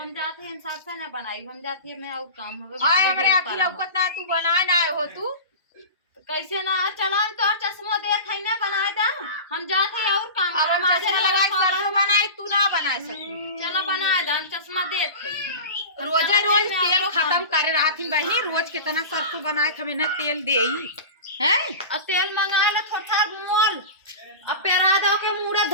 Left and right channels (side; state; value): both; inverted; correlation -0.30